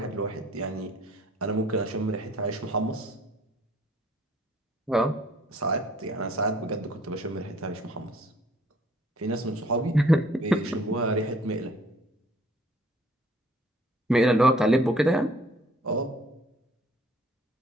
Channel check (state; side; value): normal; both; correlation 0.58